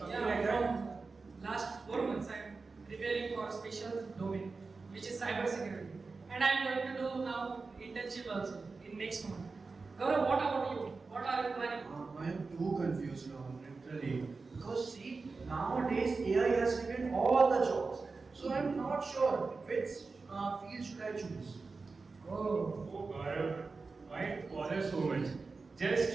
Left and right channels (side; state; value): left; quieter; 4.2 dB